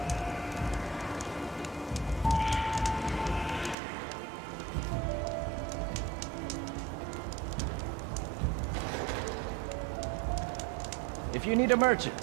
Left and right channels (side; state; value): left; drops out; at 3.8 s